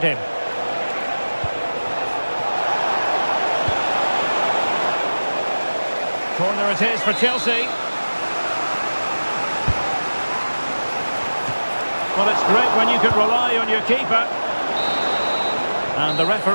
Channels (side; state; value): both; inverted; correlation -1.00